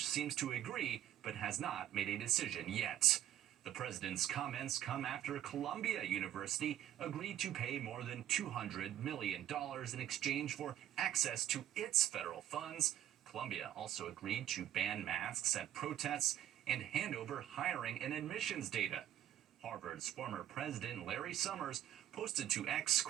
seems to agree, but has not made a decision yet. The president's comments come after Columbia University agreed to pay more than $200 million in exchange for access to its federal funds. Columbia also agreed to ban masks at protests and hand over hiring and admissions data. Harvard's former president, Larry Summers, posted to X,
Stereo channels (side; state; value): left; quieter; 11.9 dB